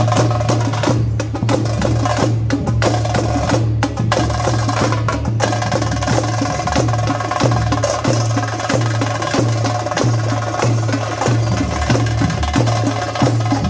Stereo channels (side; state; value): both; identical; correlation 1.00